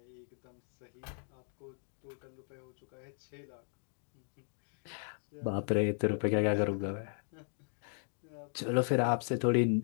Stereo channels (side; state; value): right; silent; 53 dB below the other